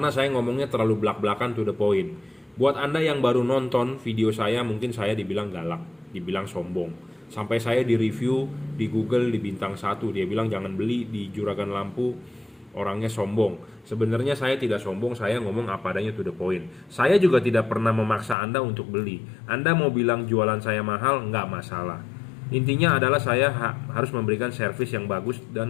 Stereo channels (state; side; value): drops out; right; at 18.4 s